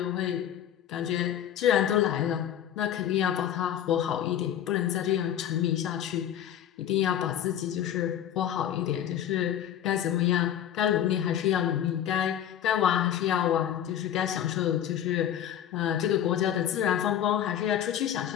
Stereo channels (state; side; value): quieter; right; 10.4 dB